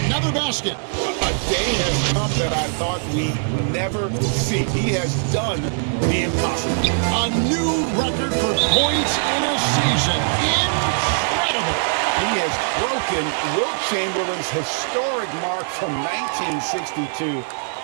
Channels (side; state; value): left; silent; digital silence